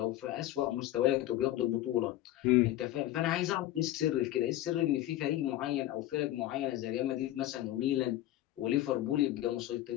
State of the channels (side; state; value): right; quieter; 14.3 dB